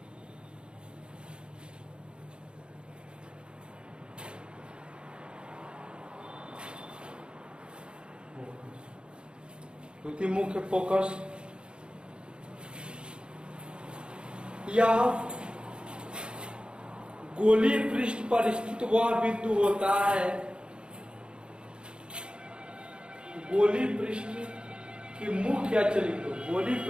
द्वितीय मुख्य फोकस या गोलीय पृष्ठ पर स्थित वह बिंदु होता है, गोलीय पृष्ठ की मुख्य अक्ष लिखो, गोलीय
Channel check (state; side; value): late; left; 0.053 ms